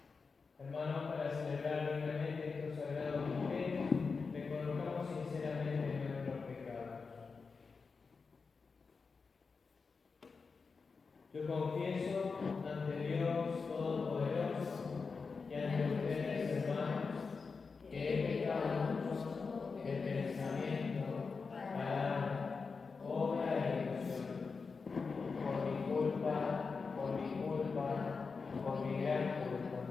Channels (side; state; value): right; quieter; 4.8 dB